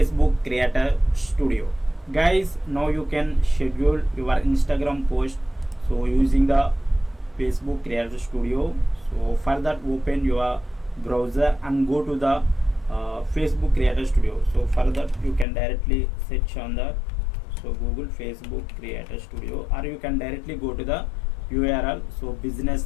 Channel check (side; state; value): right; drops out; at 15.5 s